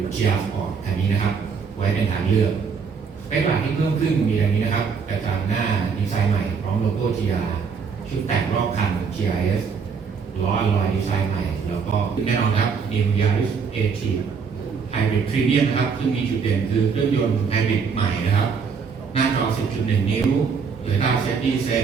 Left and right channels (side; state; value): left; quieter; 5.8 dB